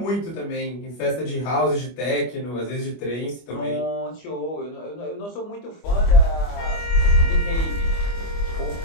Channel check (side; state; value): right; late; 25 ms